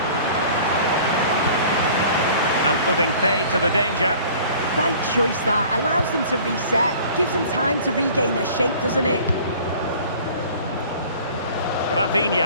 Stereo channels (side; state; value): both; inverted; correlation -0.48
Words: And putting pay to the danger. Right choice that. Allows them to reset. Gives them time to regain their shape, doesn't it?